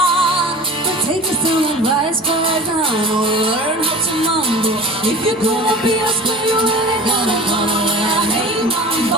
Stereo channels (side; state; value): both; normal; correlation 0.38